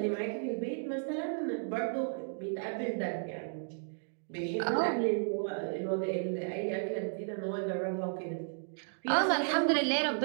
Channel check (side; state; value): left; silent; digital silence